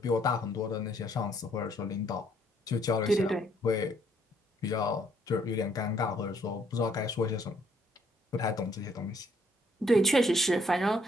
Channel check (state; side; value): normal; both; correlation 0.68